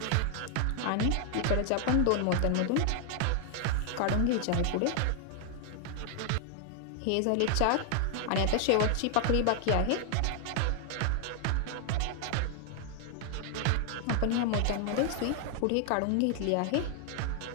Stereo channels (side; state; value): both; different; correlation 0.00